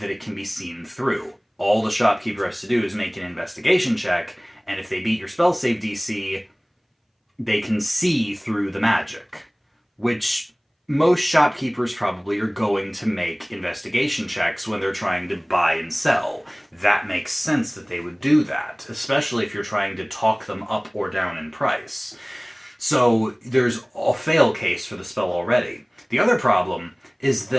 that it can be seen through. All the shopkeeper has to do is make an investigation check, and if they beat your spell save DC, they can see through the magic, which most shopkeepers probably are going to make investigation checks when they're trying to buy and sell. That makes sense that they would do that, especially if you're trying to talk them up or down in price. So there's a fail case for the spell already. The other problem is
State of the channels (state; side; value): identical; both; correlation 1.00